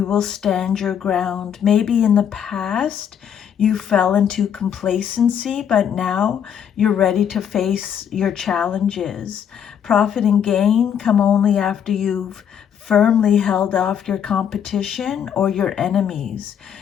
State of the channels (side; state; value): right; quieter; 8.5 dB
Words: will stand your ground. Maybe in the past you fell into complacency, but now you're ready to face your challenges. Profit and gain come only after you've firmly held off your competition or your enemies.